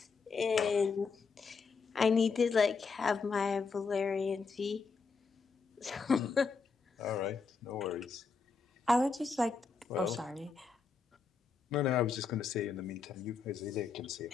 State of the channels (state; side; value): quieter; right; 5.0 dB